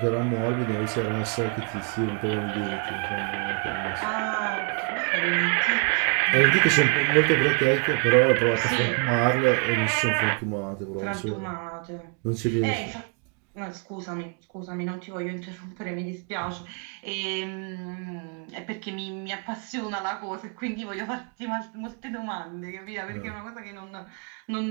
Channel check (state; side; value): quieter; left; 36.7 dB